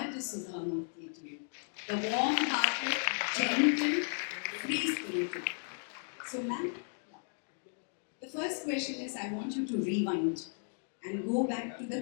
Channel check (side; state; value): right; silent; 54 dB below the other